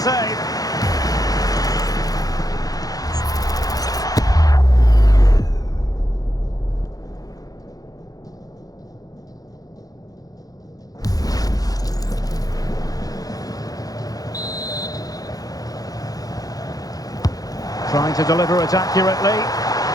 Trying to deliver it accurately.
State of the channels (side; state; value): right; late; 0.18 ms